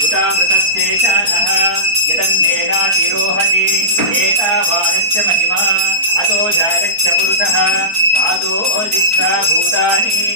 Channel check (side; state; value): left; late; 4.4 ms